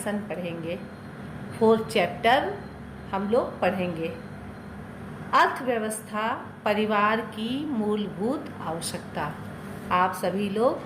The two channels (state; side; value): identical; both; correlation 1.00